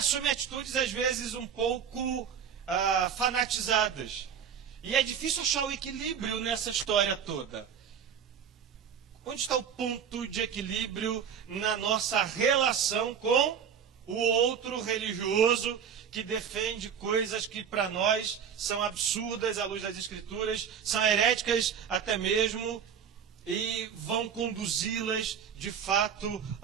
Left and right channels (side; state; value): left; quieter; 7.7 dB